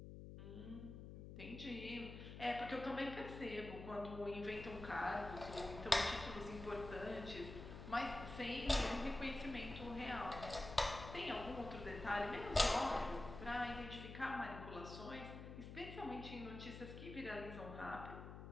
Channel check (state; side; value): noise; left; hum, 10 dB below the sound